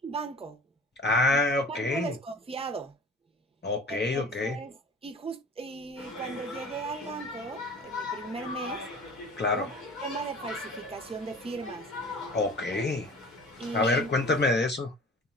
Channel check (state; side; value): normal; both; correlation 0.42